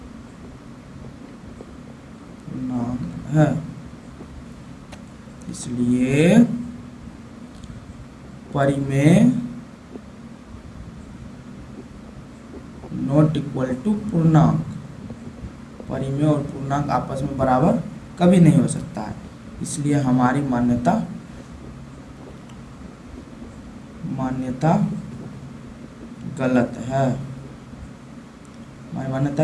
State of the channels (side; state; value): both; identical; correlation 1.00